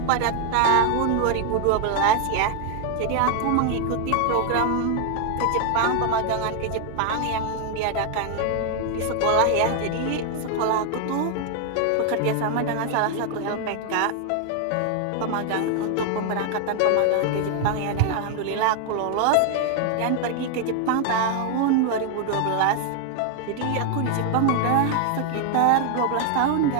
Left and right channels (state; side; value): different; both; correlation 0.00